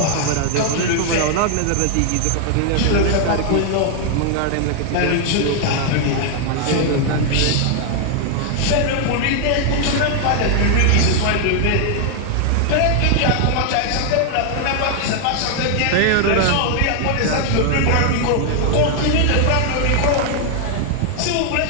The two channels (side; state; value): both; different; correlation 0.00